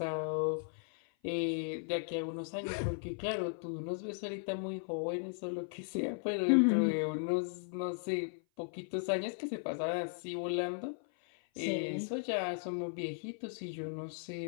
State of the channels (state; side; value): silent; right; 53 dB below the other